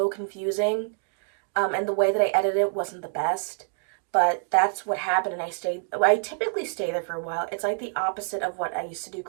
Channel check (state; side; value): silent; left; digital silence